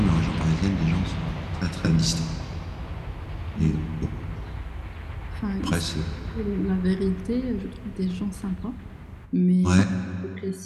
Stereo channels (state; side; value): identical; both; correlation 1.00